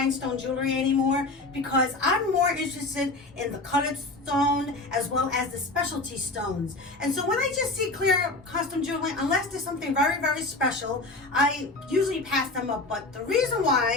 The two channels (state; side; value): quieter; right; 3.1 dB